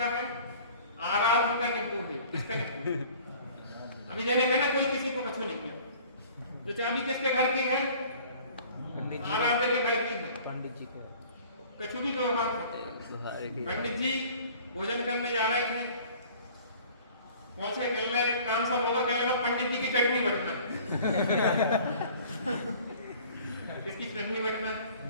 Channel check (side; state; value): both; inverted; correlation -0.49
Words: है? आराध्य का नींबू है। किसका नींबू? अभी जैसे कहना कोई किसी को कछु नहीं है। तो चाबी किसके घर की है? आराध्य के घर की है। पंडित जी के कछु भी व्यवहार। पंडित जी भोजन करने जा रहे थे, पहुंचे, कल काम सब होगा, कल लगा पंडित जी की चटनी बटना। किसकी चटनी बटना?